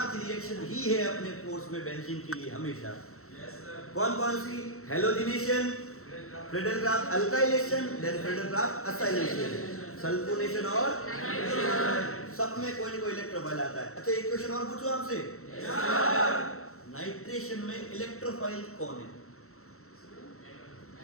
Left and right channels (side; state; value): right; late; 0.63 ms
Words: रिएक्शन ही है अपने कोर्स में बेंजीन के लिए हमेशा। कौन कौन सी? Halogenation, Friedel Crafts alkylation, then Friedel Crafts acylation, sulphonation और सब में कोई ना कोई इलेक्ट्रोफाइल आता है। अच्छा एक क्वेश्चन और पूछूं आपसे, नाइट्रेशन में इलेक्ट्रोफाइल कौन है?